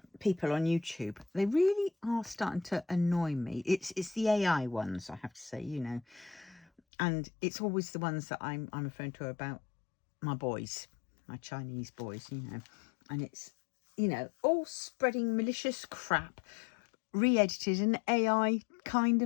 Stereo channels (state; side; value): drops out; right; at 6.8 s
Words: people on YouTube, they really are starting to annoy me. It's the AI ones, I have to say, you know. And it's always the ones that I'm referring to about my boys, my Chinese boys, you know. And it's, you know, all spreading malicious crap, re-edited and AI kind